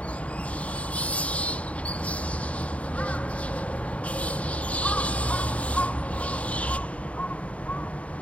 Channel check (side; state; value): right; late; 0.066 ms